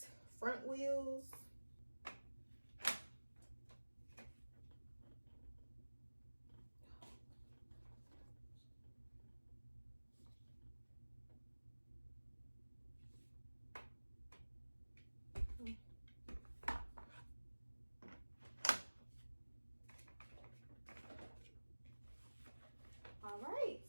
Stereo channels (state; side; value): inverted; both; correlation -1.00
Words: front wheels. All right,